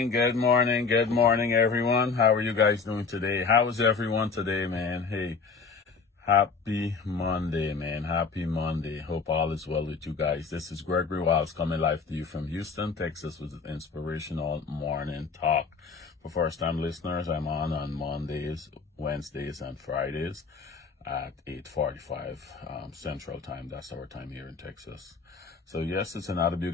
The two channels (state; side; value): quieter; right; 4.9 dB